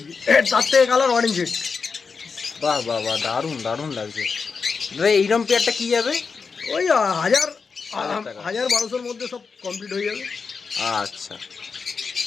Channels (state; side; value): quieter; right; 5.2 dB